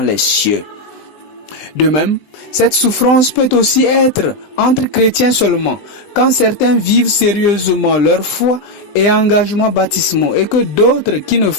les cieux. De même, cette souffrance peut aussi être entre chrétiens seulement, quand certains vivent sérieusement leur foi et engagement baptismaux et que d'autres qui ne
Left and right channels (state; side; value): late; right; 20 ms